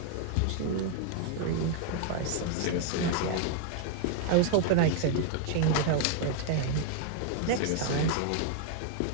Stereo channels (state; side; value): different; both; correlation 0.00